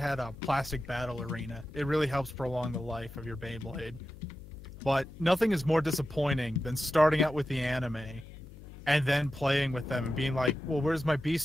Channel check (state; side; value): noise; left; hum, 16 dB below the sound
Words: a plastic battle arena. It really helps prolong the life of your Beyblade. But nothing is more disappointing than starting out with the anime and then playing with them and being like, well, where's my